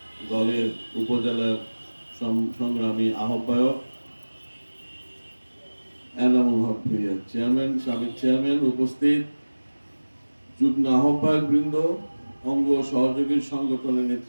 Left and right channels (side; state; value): both; inverted; correlation -1.00